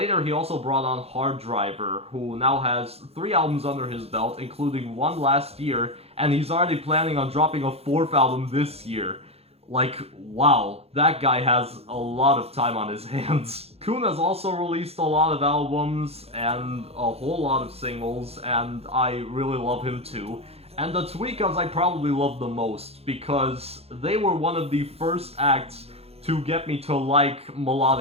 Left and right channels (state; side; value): late; left; 0.29 ms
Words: he also brought on Hard Driver, who now has 3 albums under his belt, including one last year, and he's already planning on dropping a 4th album this year. Like, wow, that guy has a lot of time on his hands. Coone has also released a lot of albums and a whole lot of singles, and I really love him too. And the Tweekaz I probably love the most, because they were one of the first acts to get me to like